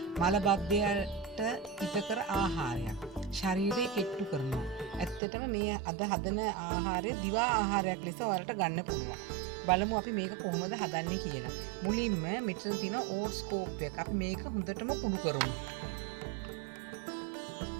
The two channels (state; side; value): drops out; left; at 5.2 s